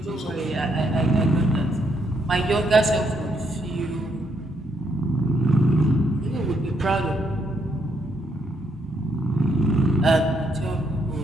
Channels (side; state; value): both; normal; correlation 0.74